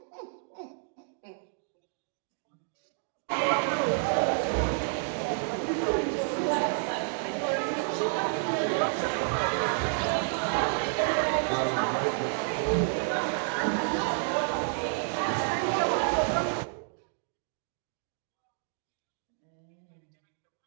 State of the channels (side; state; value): left; silent; 58 dB below the other